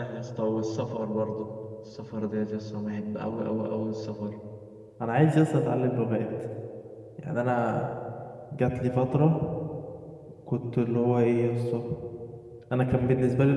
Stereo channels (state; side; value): identical; both; correlation 1.00